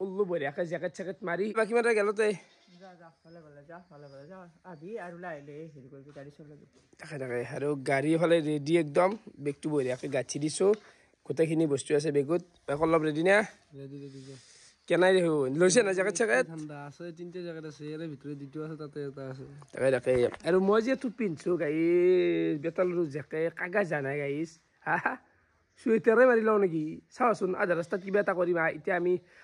উল্লু বঢ়িয়াকে জ্যাকেট মাৰি বাকি মাৰা গেলতে যা ভালে যা আদি আৰু লাইলে হেৰি কৰি গাড়ী চলাবি তাকে আৰু গাড়ী হলে ৰেডি একদম বেগটো বঢ়িয়াকে গাঠি দিছো গোটেইখিনি বস্তু আছে বেগত অলপ ৰেডি না ৰেডি কেনাই দেখো লৈছে না জ্যাকেট ঠাণ্ডা আছে তিনটা জ্যাকেট আছে এর ভিতরে দুটো আছে তাতে এটা আছে তাকে আৰু মই যে টু পিনছো গাইস বেতালৰু জ্যাকেট কাগজ জানা গাইস হা সুইটাৰে মাৰি লও নেকি চাওচোন আধা ৰাস্তাত কিবা এটা কৰিবা এতিয়া আমি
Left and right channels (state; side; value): identical; both; correlation 1.00